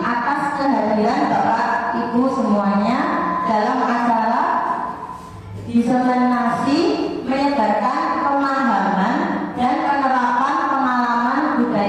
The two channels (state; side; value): identical; both; correlation 1.00